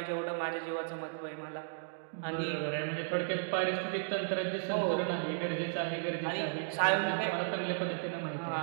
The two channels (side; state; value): left; silent; digital silence